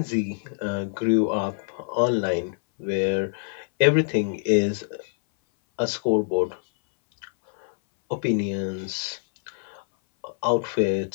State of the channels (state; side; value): silent; right; 59 dB below the other